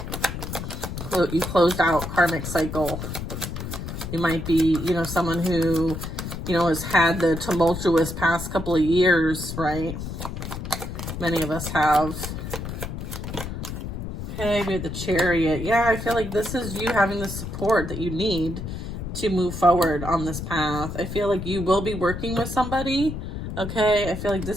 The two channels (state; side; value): noise; left; rumble, 6 dB below the sound